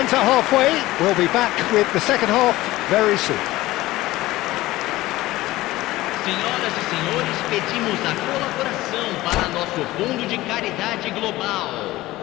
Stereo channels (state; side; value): quieter; right; 17.6 dB